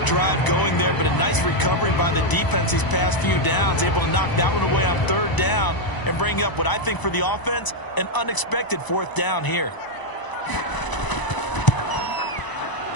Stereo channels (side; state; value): right; late; 1.0 ms